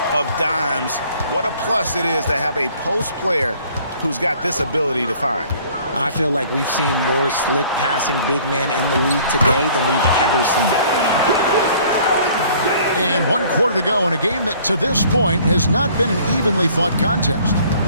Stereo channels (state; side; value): inverted; both; correlation -0.55